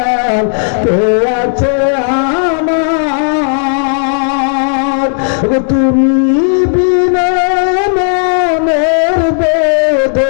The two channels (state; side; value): silent; right; digital silence